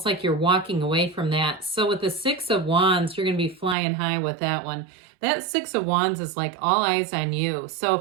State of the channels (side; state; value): left; drops out; at 3.8 s